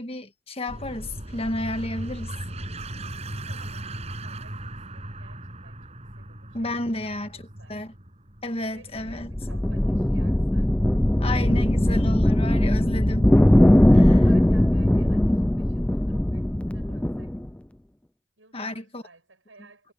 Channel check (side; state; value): both; normal; correlation 0.96